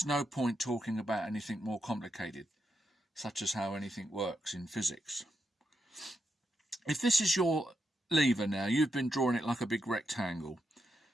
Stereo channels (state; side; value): normal; both; correlation 0.83